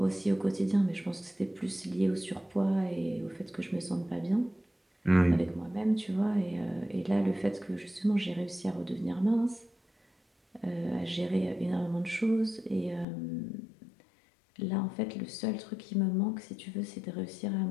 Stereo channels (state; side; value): drops out; right; at 13.1 s